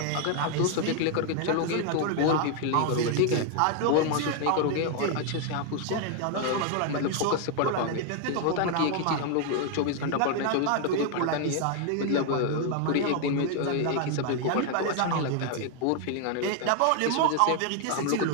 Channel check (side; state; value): both; different; correlation 0.00